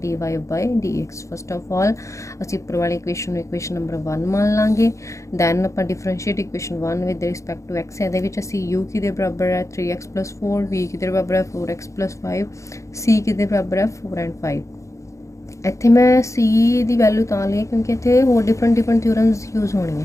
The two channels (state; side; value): late; right; 0.15 ms